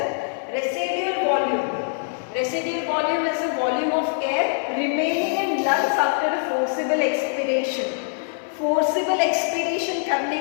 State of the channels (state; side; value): silent; right; digital silence